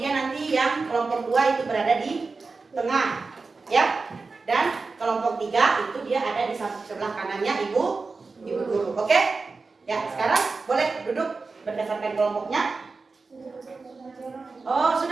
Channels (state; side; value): quieter; left; 4.1 dB